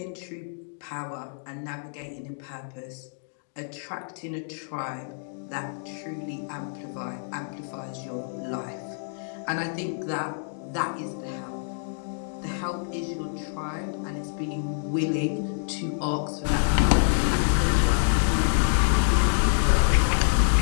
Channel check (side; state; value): right; silent; digital silence